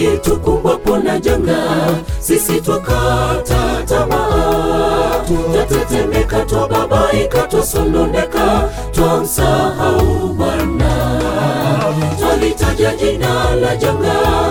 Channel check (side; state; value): both; identical; correlation 1.00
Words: tukumbwapo na janga, sisi twakata tamaa, twatetemeka, twababaika, twasononeka, twamsahau Bwana. Twalitaja jina la janga,